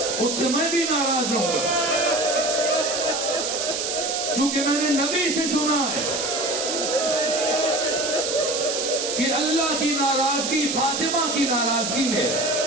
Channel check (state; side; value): noise; right; hiss, 2 dB below the sound